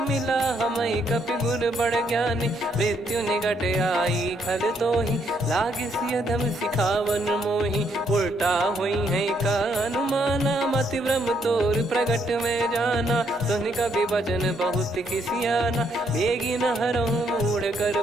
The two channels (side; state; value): both; normal; correlation 0.72